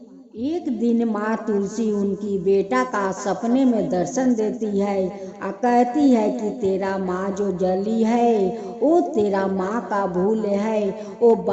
एक दिन माँ तुलसी उनकी बेटा का सपने में दर्शन देती है और कहती है कि तेरा माँ जो जली है वो तेरा माँ का भूल है। वो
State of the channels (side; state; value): both; identical; correlation 1.00